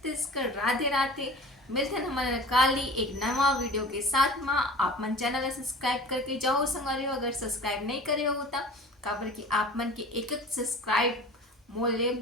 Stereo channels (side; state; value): both; normal; correlation 0.40